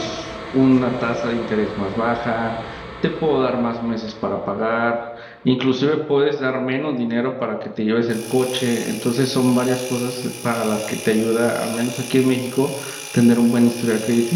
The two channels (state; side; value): identical; both; correlation 1.00